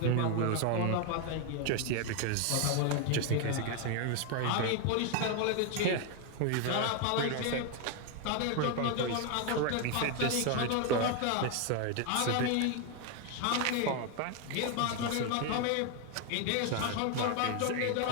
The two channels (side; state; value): both; different; correlation 0.01